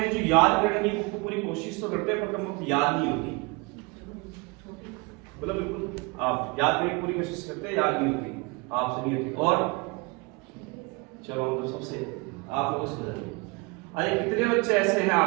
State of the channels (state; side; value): quieter; left; 27.6 dB